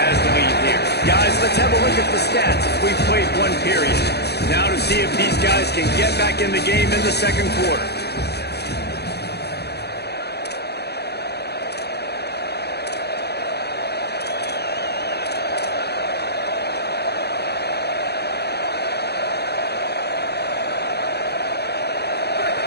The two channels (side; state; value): right; late; 0.48 ms